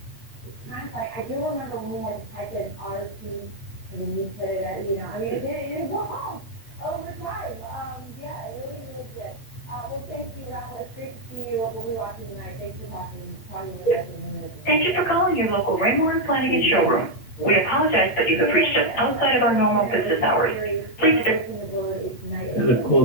It's kind of like, I do remember when we had to type in RT, and then you put it at, it was all over time. Yeah, it really was good. Well, thank you, Rafa. It's great to see you. We'll be watching tonight. Thanks for talking with us in a minute. Thank you for calling your local Raymore and Flanagan showroom. We apologize that you have reached us outside of our normal business hours. Please visit. Gotta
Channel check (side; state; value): right; late; 8.3 ms